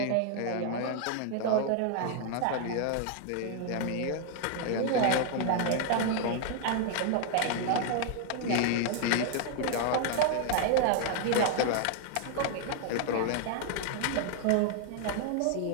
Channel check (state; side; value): different; both; correlation 0.00